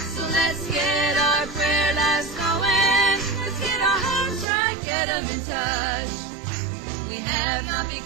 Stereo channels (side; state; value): left; drops out; at 4.5 s